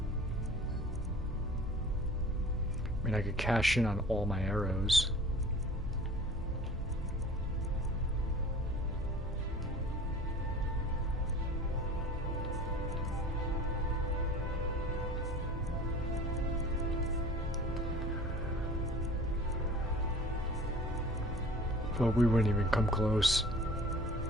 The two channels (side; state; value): both; normal; correlation 0.44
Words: I mean, I could cash in on all my arrows. But we wouldn't even come close.